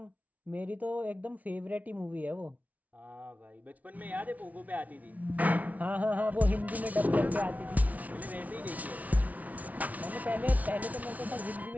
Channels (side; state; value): left; late; 0.072 ms